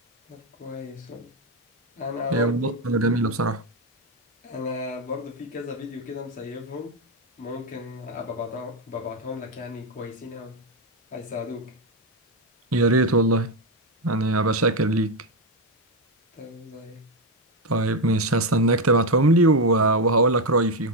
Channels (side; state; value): both; normal; correlation 0.07